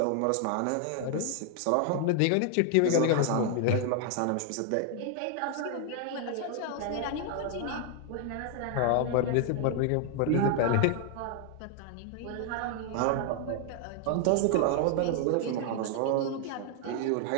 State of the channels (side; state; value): both; different; correlation 0.00